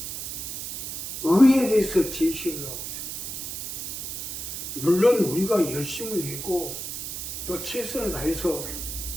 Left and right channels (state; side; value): noise; right; hiss, 6 dB below the sound